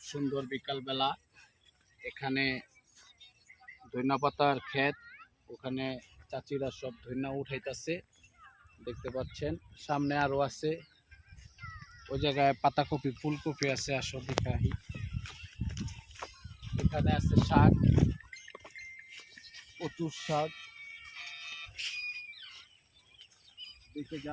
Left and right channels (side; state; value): both; identical; correlation 1.00